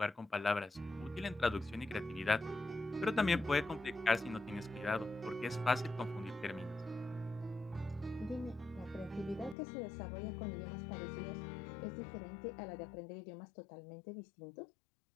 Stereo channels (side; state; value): right; drops out; at 9.6 s